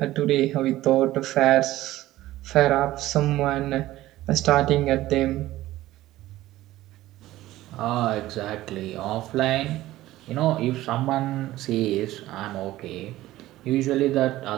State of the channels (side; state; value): left; quieter; 15.9 dB